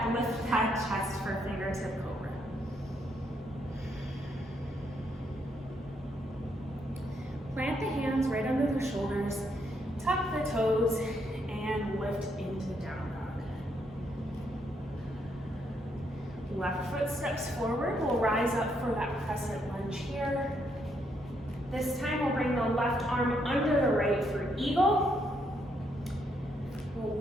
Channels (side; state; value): both; normal; correlation 0.75